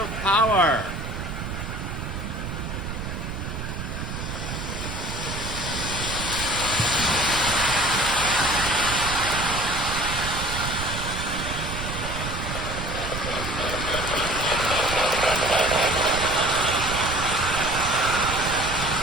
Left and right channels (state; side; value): noise; right; rumble, 6 dB below the sound